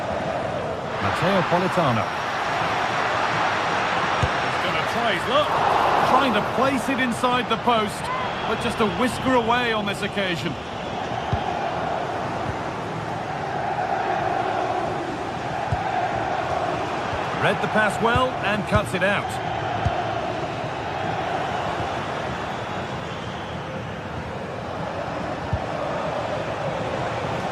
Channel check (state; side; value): identical; both; correlation 1.00